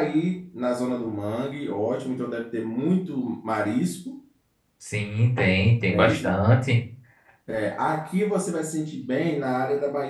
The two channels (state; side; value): identical; both; correlation 1.00